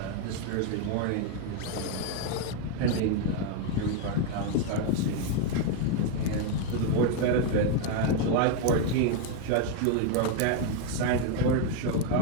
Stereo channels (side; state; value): both; different; correlation 0.01